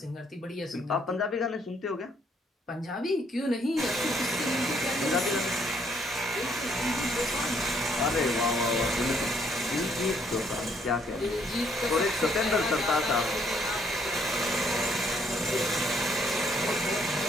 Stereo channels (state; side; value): normal; both; correlation 0.68